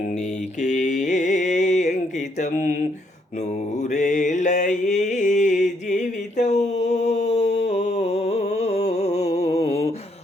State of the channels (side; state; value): both; normal; correlation 0.72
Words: నీకే అంకితం, నూరేళ్ళ ఈ జీవితం